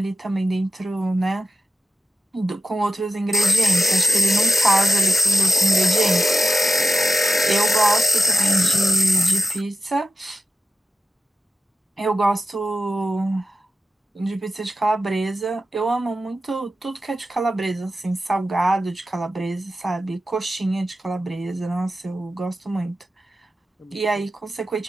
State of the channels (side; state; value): both; normal; correlation 0.92